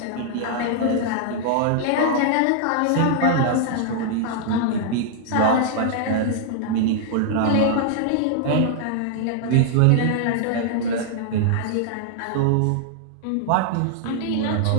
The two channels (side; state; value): both; different; correlation -0.01